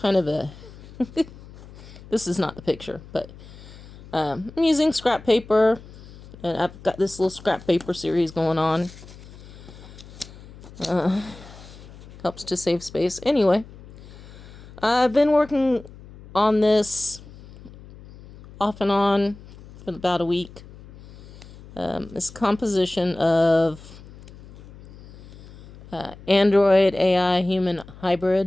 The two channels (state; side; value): noise; left; hum, 19 dB below the sound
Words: of a... This is not the picture, but I'm using scrap paper, and I've got this little scrap paper series going on. Helps to save space. Anyway, I've been working on this off and on for about a week. This composition of Android AI human